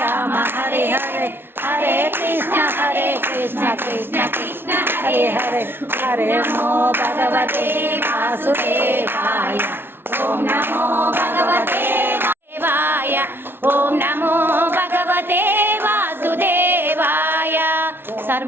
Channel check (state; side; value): late; left; 0.11 ms